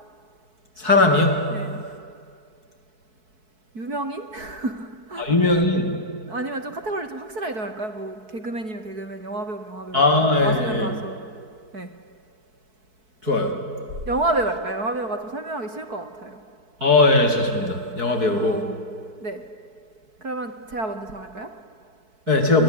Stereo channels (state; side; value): late; left; 4.6 ms